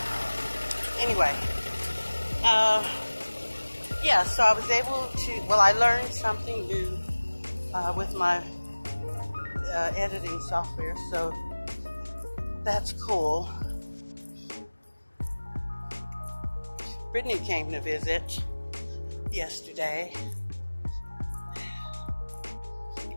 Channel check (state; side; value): inverted; both; correlation -1.00